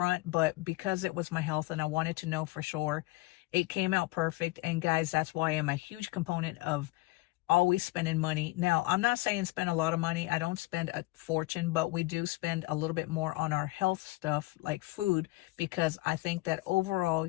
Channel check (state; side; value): quieter; right; 21.2 dB